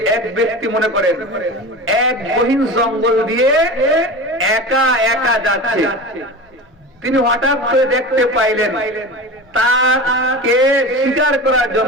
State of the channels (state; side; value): normal; both; correlation 0.31